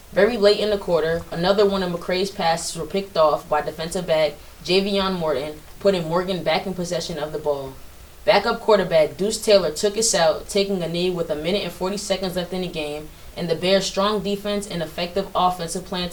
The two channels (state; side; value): identical; both; correlation 1.00